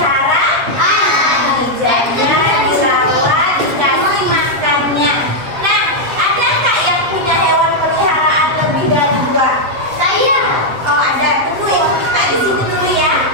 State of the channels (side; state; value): left; late; 8.0 ms